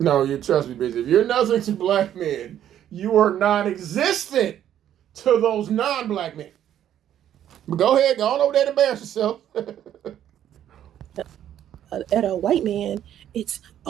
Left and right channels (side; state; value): left; quieter; 10.8 dB